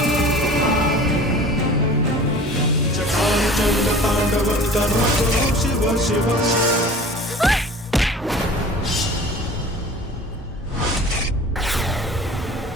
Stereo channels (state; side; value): normal; both; correlation 0.42